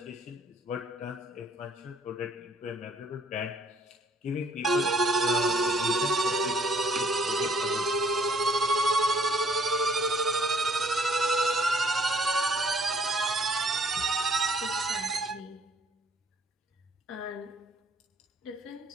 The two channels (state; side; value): normal; both; correlation 0.61